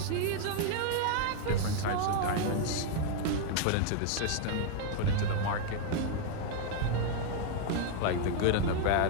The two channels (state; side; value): different; both; correlation 0.00